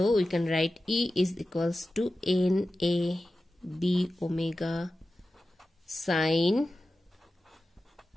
we can write E is equals to NA B omega sine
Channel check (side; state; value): both; normal; correlation 0.94